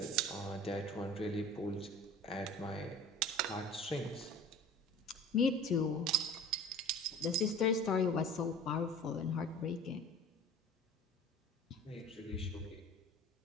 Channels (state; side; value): normal; both; correlation 0.43